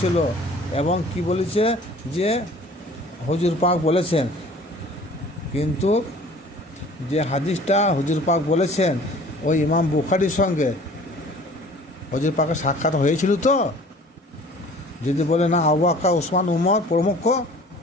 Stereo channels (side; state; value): both; normal; correlation 0.49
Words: এবং কি বলেছে যে হুজুর পাক বলেছেন, কিন্তু যে হাদিসটা হুজুর পাক বলেছেন ওই ইমাম বুখারীর সঙ্গে হুজুর পাকের সাক্ষাৎ হয়েছিল। তো যদি বলে না আবু বকর, ওসমান, উমর প্রমুখ